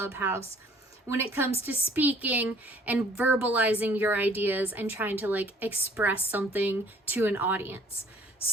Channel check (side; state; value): both; normal; correlation 0.56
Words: when it comes to speaking and verbalizing your ideas and trying to express something to an audience.